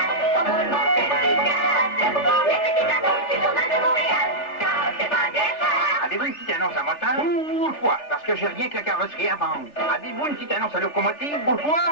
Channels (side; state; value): right; late; 3.4 ms